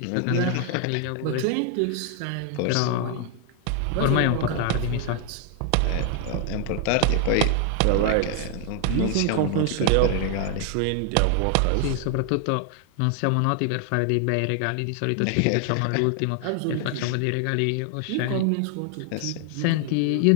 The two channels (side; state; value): both; different; correlation 0.00